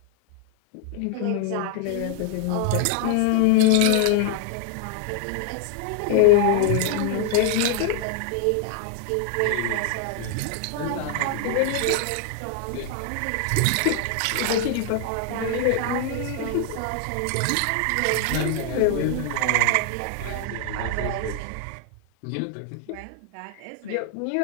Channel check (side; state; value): both; different; correlation 0.00